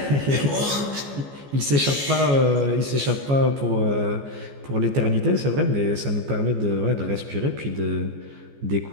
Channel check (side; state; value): left; late; 14 ms